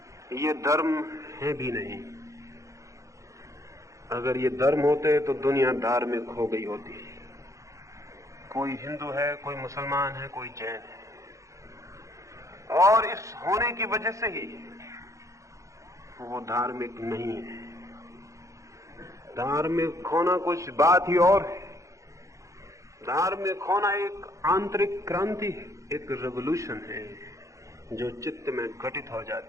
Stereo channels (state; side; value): late; left; 0.15 ms